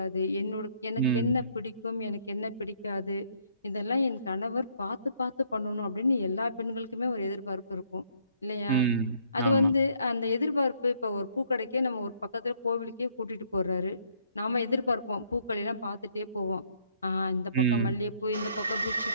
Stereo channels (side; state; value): both; inverted; correlation -0.66